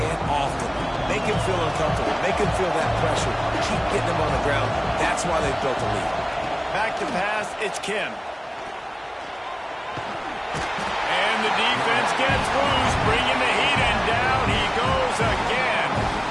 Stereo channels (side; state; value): both; identical; correlation 1.00